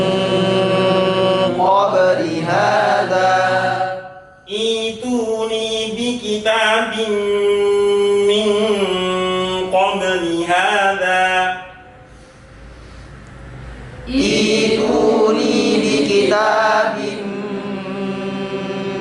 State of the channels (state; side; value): identical; both; correlation 1.00